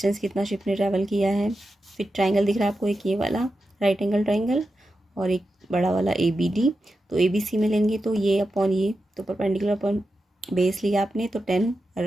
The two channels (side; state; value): both; normal; correlation 0.90